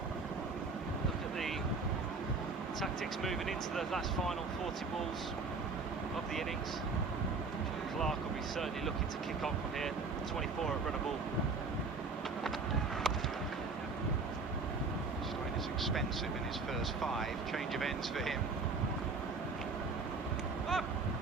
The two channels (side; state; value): left; quieter; 4.1 dB